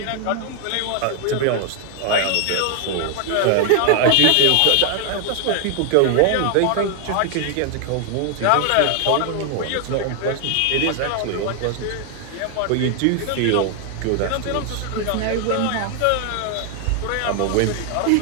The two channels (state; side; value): different; both; correlation 0.00